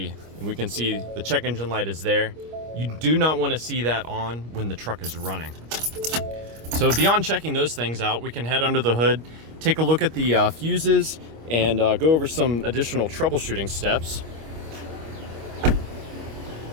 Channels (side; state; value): left; late; 25 ms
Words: and we can see the check engine light is there. You do not want to see that on when the truck is running. So beyond checking those things out, we can head under the hood, take a look at the fuses, and go over some additional troubleshooting steps.